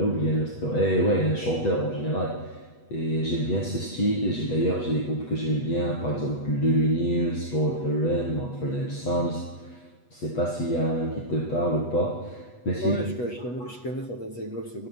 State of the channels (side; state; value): right; late; 8.2 ms